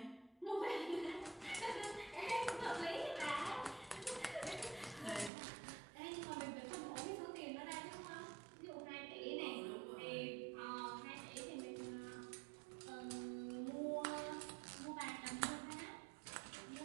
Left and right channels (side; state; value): left; drops out; at 5.3 s